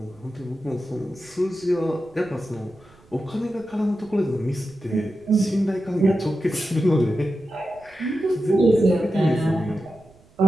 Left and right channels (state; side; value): noise; right; rumble, 28 dB below the sound